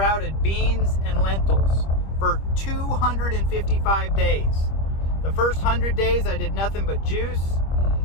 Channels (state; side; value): late; right; 25 ms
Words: beans and lentils for 255 days. The first 100 days I did nothing but juice,